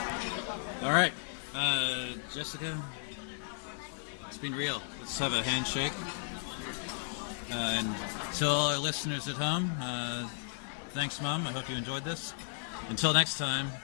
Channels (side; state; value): right; silent; 55 dB below the other